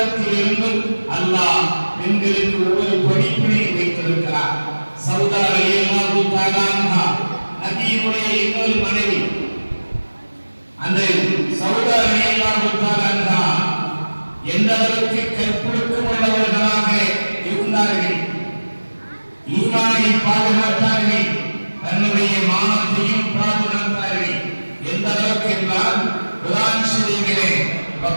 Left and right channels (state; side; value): inverted; both; correlation -1.00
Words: அல்லாஹ் பெண்களுக்கு ஒவ்வொரு படிப்பினை வைத்திருக்கிறார். சௌதா ரலியல்லாஹு தஆலா அன்ஹா நபியினுடைய இன்னொரு மனைவி. அந்த சௌதா ரலியல்லாஹு தஆலா அன்ஹா எந்த அளவுக்கு கற்பொழுக்கம் உள்ளவர்களாக இருந்தார்கள், ஈமானை பாதுகாத்தார்கள், தன்னுடைய மானத்தையும் பாதுகாத்தார்கள். எந்த அளவுக்கு என்றால் குர்ஆன் ஷரீஃபிலே